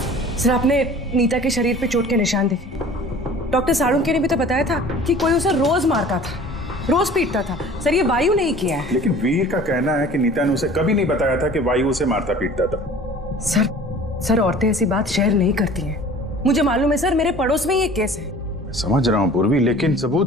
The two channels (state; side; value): normal; both; correlation 0.45